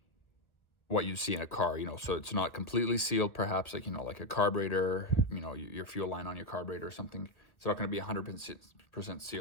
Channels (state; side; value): late; right; 1.1 ms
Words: what you see in a car, so it's not completely sealed, perhaps like a carburetor, your fuel line on your carburetor or something. It's not going to be 100%